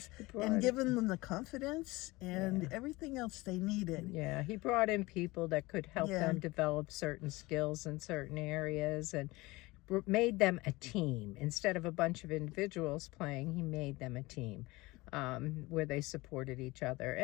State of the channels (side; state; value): right; quieter; 21.5 dB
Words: and giving them the confidence and everything else they needed. Yeah, he brought in people that could help them develop certain skills in certain areas and made them a team. Instead of a bunch of individuals playing, he made them a team where they supported each other.